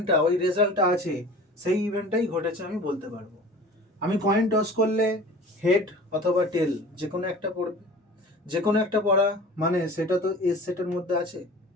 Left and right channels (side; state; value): both; normal; correlation 0.41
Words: ওই রেজাল্টটা আছে, সেই ইভেন্টটাই ঘটেছে আমি বলতে পারবো। আমি কয়েন টস করলে হেড অথবা টেল যে কোনো একটা পড়বে, যে কোনো একটা পড়া মানে সেটা তো এস সেটের মধ্যে আছে,